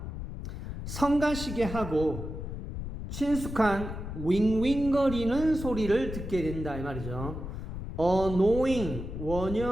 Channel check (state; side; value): noise; left; rumble, 7 dB below the sound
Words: 성가시게 하고 친숙한 윙윙거리는 소리를 듣게 된다 이 말이죠. Annoying,